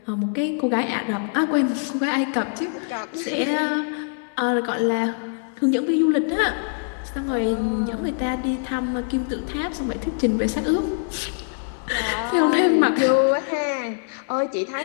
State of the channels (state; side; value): silent; right; digital silence